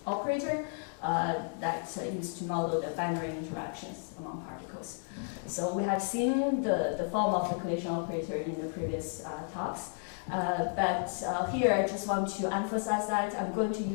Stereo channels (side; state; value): right; silent; 56 dB below the other